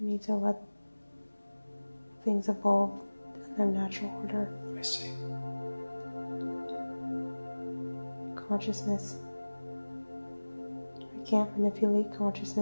need to let things evolve in their natural order. I see. Consciousness. I can't manipulate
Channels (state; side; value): inverted; both; correlation -1.00